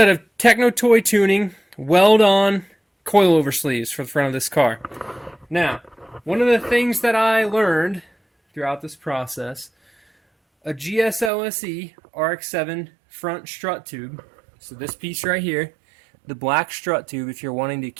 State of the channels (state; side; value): drops out; left; at 11.3 s